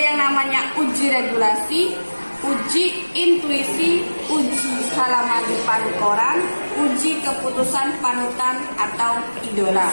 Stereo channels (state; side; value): inverted; both; correlation -1.00